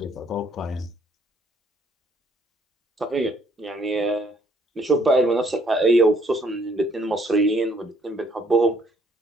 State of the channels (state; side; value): normal; both; correlation 0.65